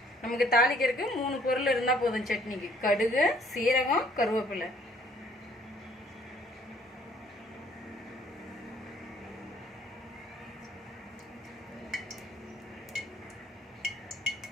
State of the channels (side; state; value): both; normal; correlation 0.60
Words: நமக்கு தாளிக்கிறதுக்கு 3 பொருள் இருந்தால் போதும் சட்னிக்கு. கடுகு, சீரகம், கருவேப்பிலை.